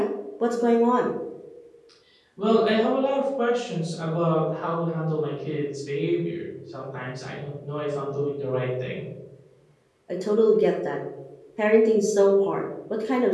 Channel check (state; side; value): identical; both; correlation 1.00